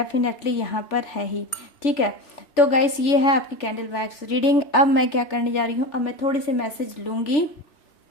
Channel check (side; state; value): right; late; 3.4 ms